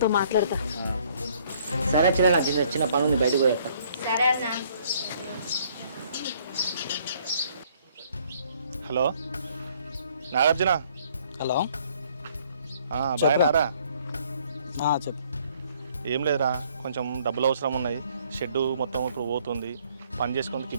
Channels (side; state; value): both; inverted; correlation -0.63